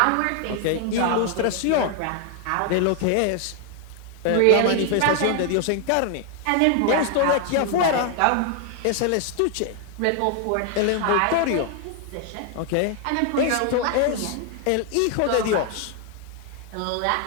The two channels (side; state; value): both; different; correlation 0.00